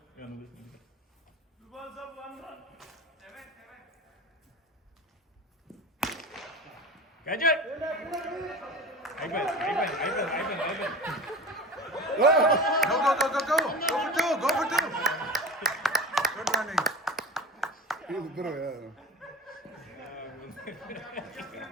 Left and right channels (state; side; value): normal; both; correlation 0.32